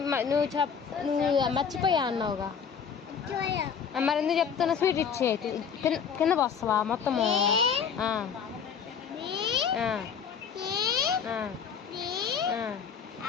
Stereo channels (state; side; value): quieter; right; 7.0 dB